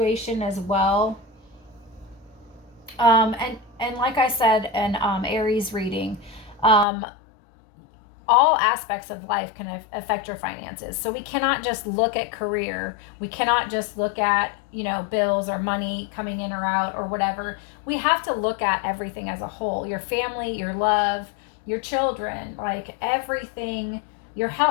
as well. And like I said in Aries reading, all aspects of life can affect your finances. So we cannot just look at career. We cannot just look at, you know, bills or money coming in or out or whatever. We have to look at everything as a whole. Your family, your love, your children, like everything, your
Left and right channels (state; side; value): drops out; right; at 6.9 s